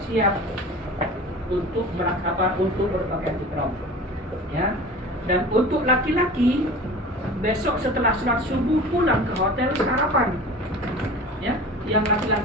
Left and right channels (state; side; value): normal; both; correlation 0.38